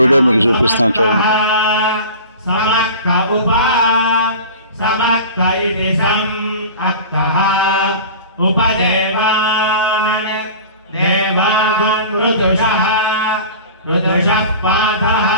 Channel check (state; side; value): inverted; both; correlation -0.37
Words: వీడియో మీకు చూపిస్తాను, చూడండి.